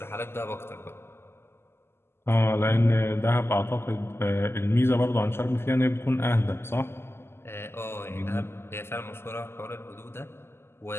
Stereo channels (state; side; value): late; right; 0.12 ms